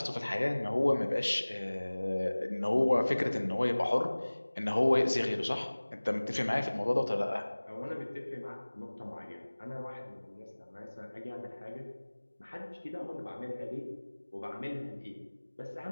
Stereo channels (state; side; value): inverted; both; correlation -1.00